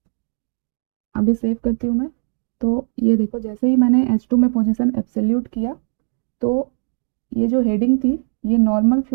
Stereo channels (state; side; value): silent; left; 59 dB below the other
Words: अभी सेव करती हूँ मैं। तो ये देखो, जैसे ही मैंने H2 में पोजीशन एब्सोल्यूट किया तो ये जो हेडिंग थी ये नॉर्मल